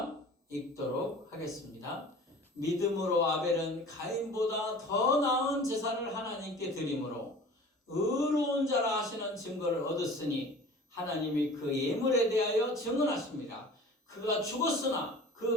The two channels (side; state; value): both; normal; correlation 0.42